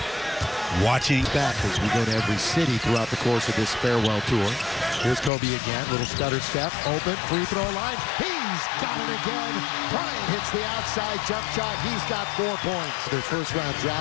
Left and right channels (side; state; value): right; drops out; at 5.3 s